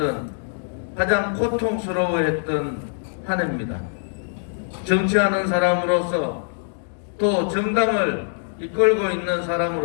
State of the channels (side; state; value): right; silent; digital silence